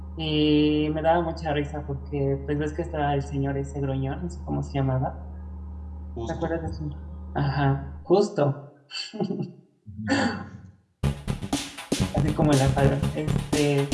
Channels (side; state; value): both; identical; correlation 1.00